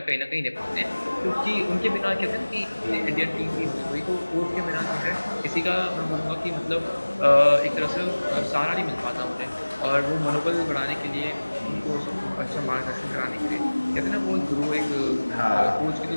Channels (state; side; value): inverted; both; correlation -1.00